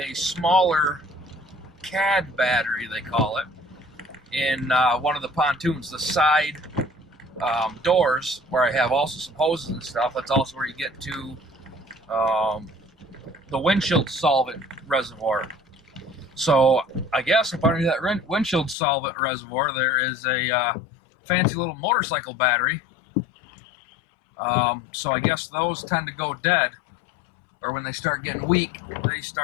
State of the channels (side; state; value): right; drops out; at 18.8 s